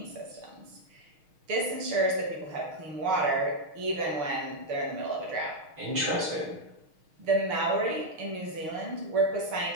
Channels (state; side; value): late; left; 6.3 ms